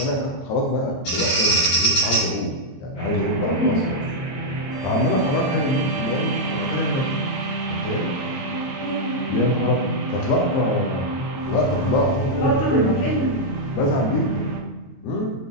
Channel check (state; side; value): late; right; 22 ms